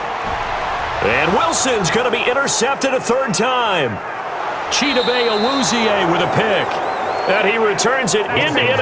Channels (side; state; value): both; identical; correlation 1.00